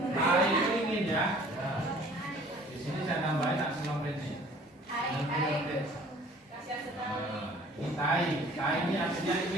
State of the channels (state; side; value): normal; both; correlation 0.52